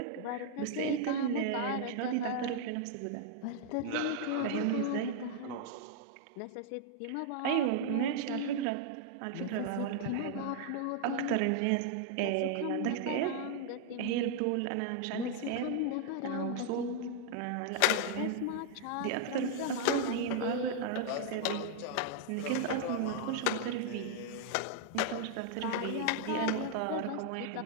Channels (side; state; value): both; different; correlation -0.01